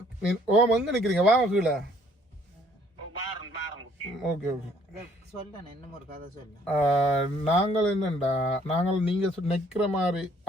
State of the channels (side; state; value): both; normal; correlation 0.62